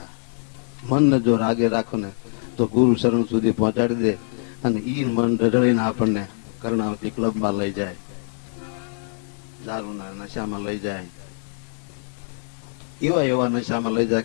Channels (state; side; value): silent; right; 63 dB below the other